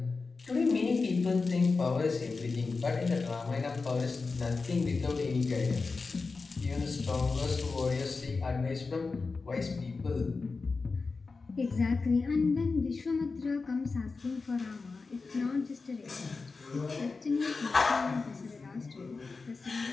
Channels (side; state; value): right; quieter; 4.2 dB